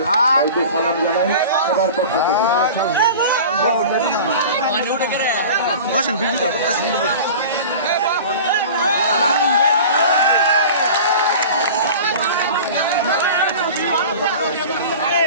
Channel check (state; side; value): inverted; both; correlation -0.37